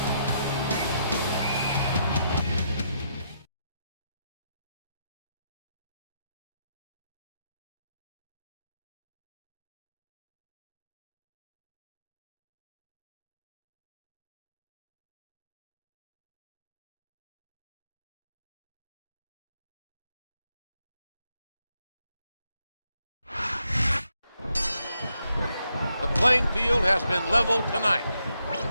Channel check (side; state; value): both; inverted; correlation -0.79